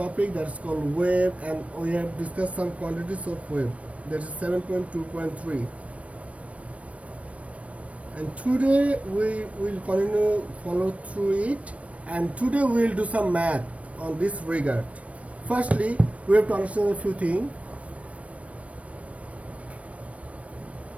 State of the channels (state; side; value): late; left; 0.064 ms